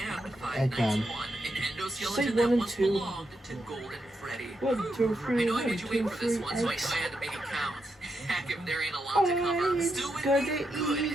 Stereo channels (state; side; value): normal; both; correlation 0.84